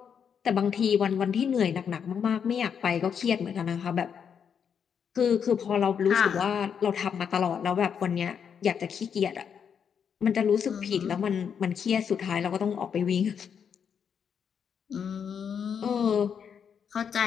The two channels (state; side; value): quieter; right; 7.4 dB